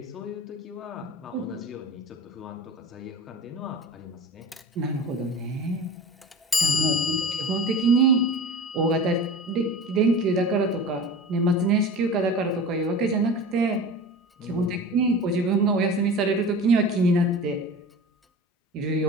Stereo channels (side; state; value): both; normal; correlation 0.35